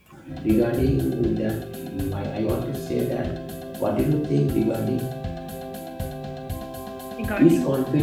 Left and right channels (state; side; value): identical; both; correlation 1.00